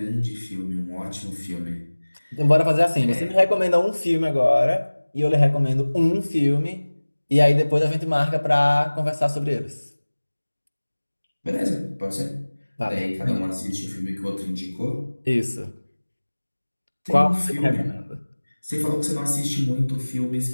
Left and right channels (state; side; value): inverted; both; correlation -1.00